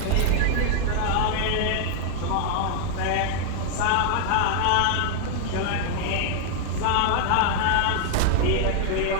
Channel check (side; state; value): both; different; correlation 0.00